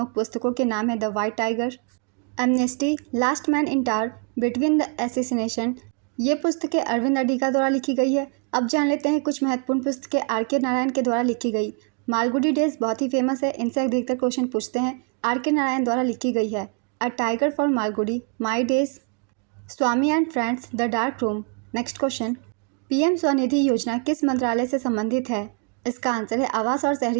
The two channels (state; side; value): quieter; left; 36.9 dB